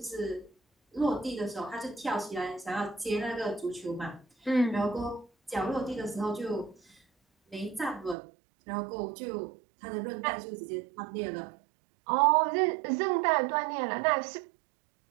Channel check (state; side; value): drops out; left; at 8.2 s